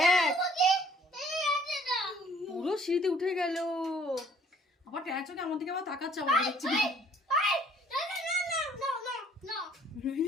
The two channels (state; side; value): normal; both; correlation 0.58